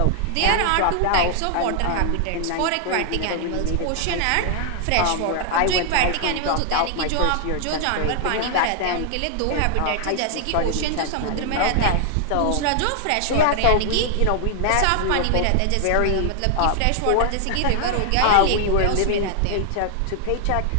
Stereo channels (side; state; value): both; different; correlation 0.00